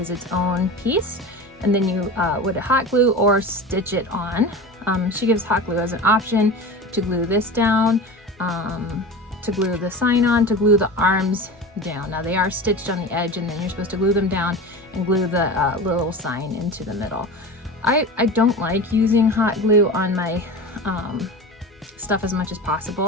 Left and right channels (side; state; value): both; normal; correlation 0.31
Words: its own piece, and then you would hot glue or stitch it on. She gives hot glue as an option to glue this down, to glue the sign on, to glue the arms down. Now they are stitched on the edge, and then you're supposed to glue them down and glue the little sign into the middle. I don't like using hot glue on my stuff as much as